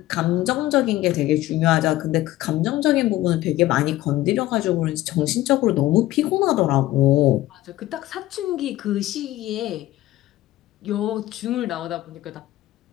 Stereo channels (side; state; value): right; quieter; 15.9 dB